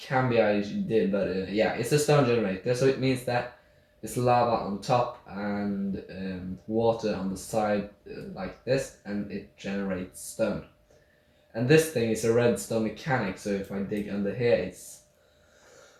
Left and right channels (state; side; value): identical; both; correlation 1.00